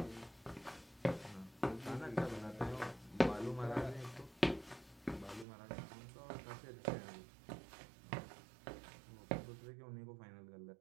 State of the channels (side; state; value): left; drops out; at 5.5 s